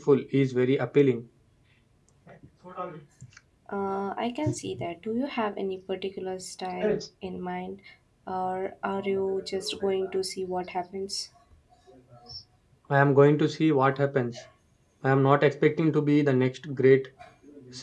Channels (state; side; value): identical; both; correlation 1.00